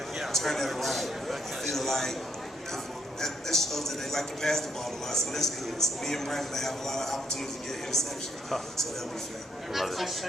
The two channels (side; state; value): both; normal; correlation 0.73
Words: turn that around. I feel like that shows that they like to pass the ball a lot, so that's good. So me and Brandon have a lot of opportunities to get interceptions, so that'll be fun. Does it